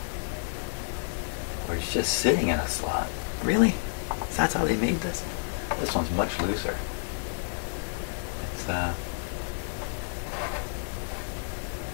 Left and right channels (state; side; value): silent; right; 58 dB below the other